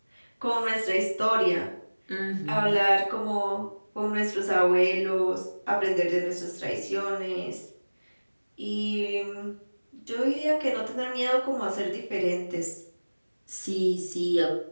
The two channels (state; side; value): inverted; both; correlation -1.00